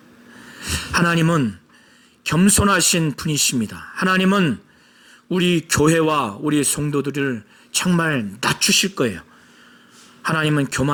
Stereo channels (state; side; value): identical; both; correlation 1.00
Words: 하나님은 겸손하신 분이십니다. 하나님은 우리 교회와 우리 성도들을 정말 낮추실 거예요. 하나님은